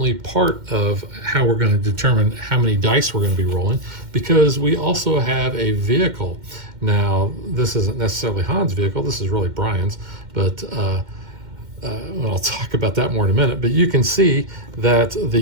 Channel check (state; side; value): late; left; 2.1 ms